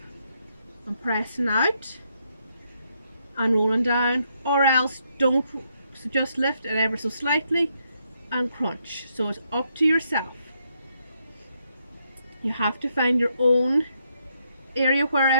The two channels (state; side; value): inverted; both; correlation -0.77